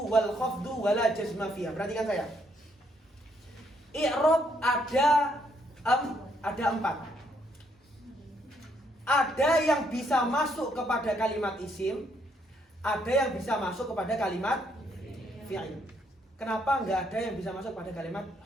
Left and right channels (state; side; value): normal; both; correlation 0.72